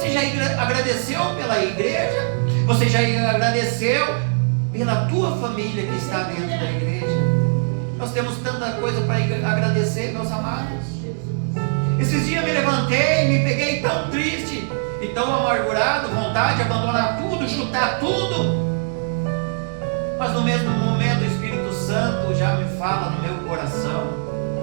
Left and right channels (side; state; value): left; silent; 65 dB below the other